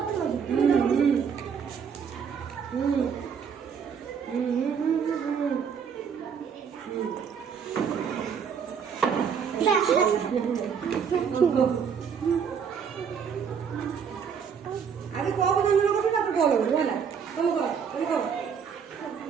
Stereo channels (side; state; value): left; quieter; 6.9 dB